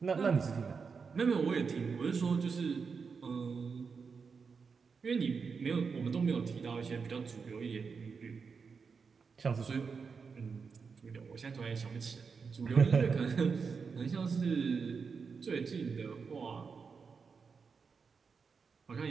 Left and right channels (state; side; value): quieter; left; 5.4 dB